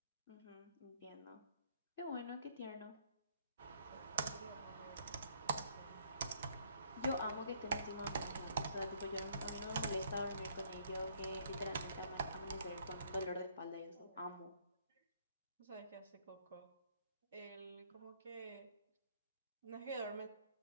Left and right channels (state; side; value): inverted; both; correlation -0.63